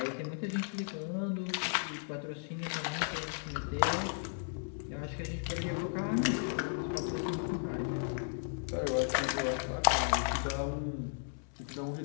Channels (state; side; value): silent; right; digital silence